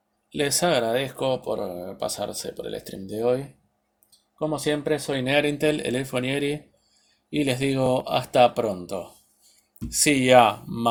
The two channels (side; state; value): both; identical; correlation 1.00